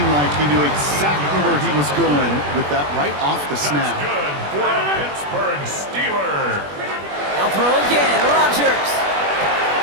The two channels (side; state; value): left; late; 21 ms